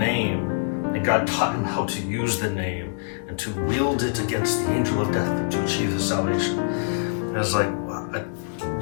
and God taught him how to use the name and to wield it against the angel of death and to achieve his salvation. And I was like,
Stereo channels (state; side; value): silent; right; digital silence